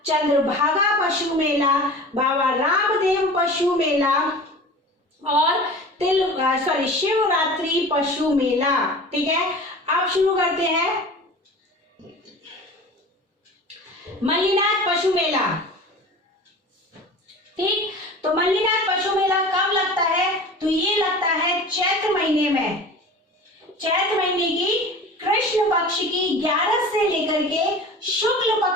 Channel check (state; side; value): normal; both; correlation 0.38